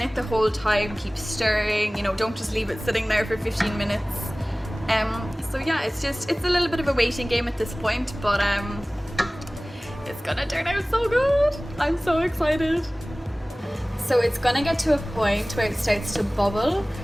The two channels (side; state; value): both; normal; correlation 0.98